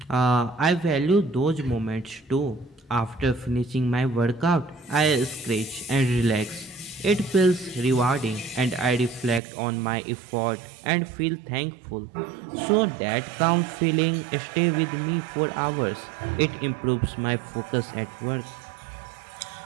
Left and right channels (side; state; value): left; drops out; at 9.4 s